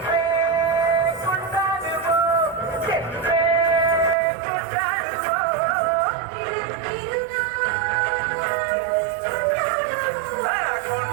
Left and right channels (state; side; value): drops out; left; at 4.2 s